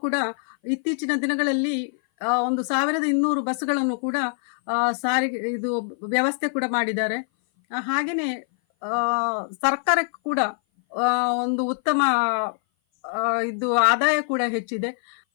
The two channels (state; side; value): silent; right; 58 dB below the other